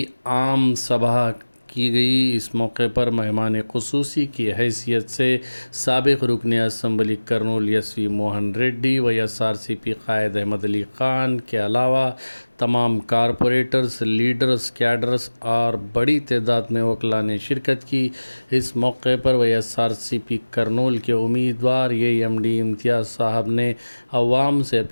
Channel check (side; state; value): both; inverted; correlation -1.00